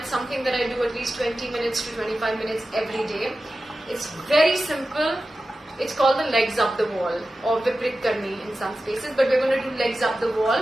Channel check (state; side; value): normal; both; correlation 0.94